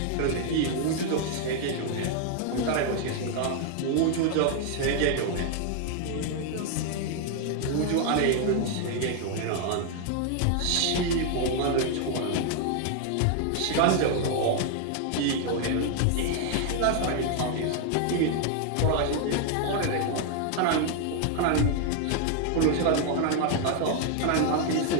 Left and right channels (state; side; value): different; both; correlation 0.00